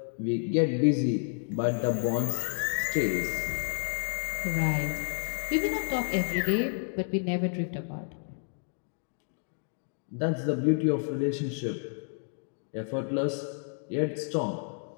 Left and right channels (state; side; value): silent; right; 58 dB below the other